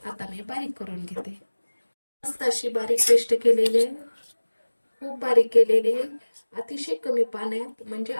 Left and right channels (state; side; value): inverted; both; correlation -1.00